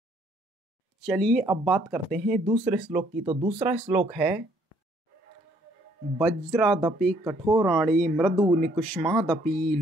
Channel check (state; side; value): normal; both; correlation 0.65